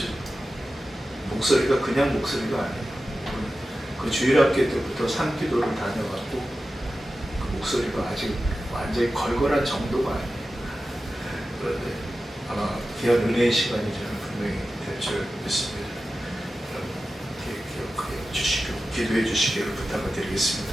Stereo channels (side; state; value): both; normal; correlation 0.93